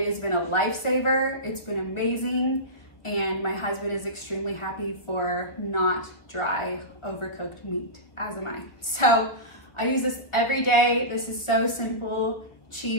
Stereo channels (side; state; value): right; late; 1.2 ms